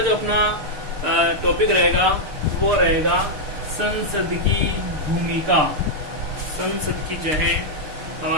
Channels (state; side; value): late; left; 6.7 ms